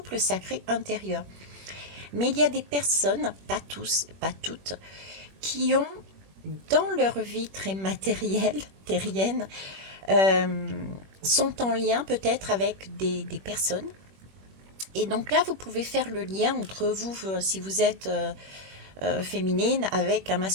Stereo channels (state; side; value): late; left; 21 ms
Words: sacré intérieur. Mais il y a des personnes, pas tous, pas toutes, qui ont dans leur vie très matérielle, terrienne, euh, sont en lien peut-être avec des personnes Et donc là, vous pouvez faire le lien entre vous, si vous êtes féminine avec un